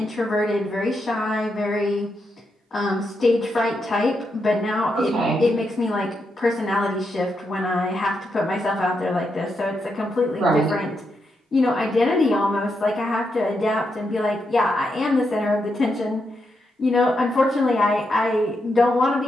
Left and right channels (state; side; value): normal; both; correlation 0.83